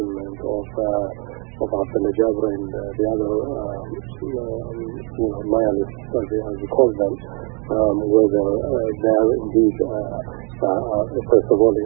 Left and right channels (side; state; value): left; quieter; 34.7 dB